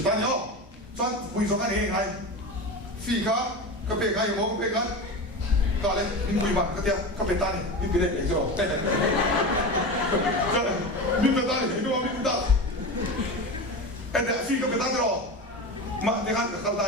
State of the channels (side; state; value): both; normal; correlation 0.25